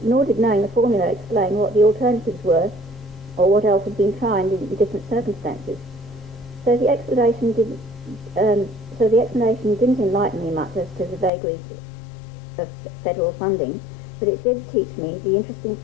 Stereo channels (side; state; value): right; drops out; at 11.3 s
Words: did knowing the formula explain what the alternatives were or what else had been tried in different circumstances. So the explanation didn't enlighten me much as to the vagaries of federal funding, but it did teach me the interesting